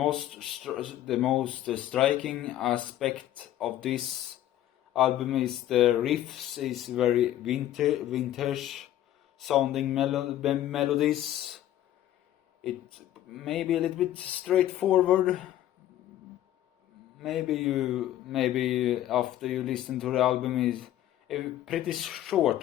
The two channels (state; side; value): quieter; right; 12.8 dB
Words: striking aspect of this album is the riffs is very vintage sounding melodies. It may be a little bit straightforward. Maybe after you listen to the album, is a pretty